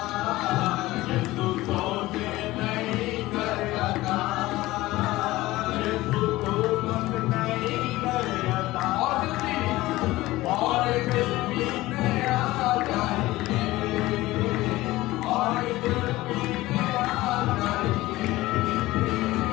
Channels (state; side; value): quieter; right; 18.1 dB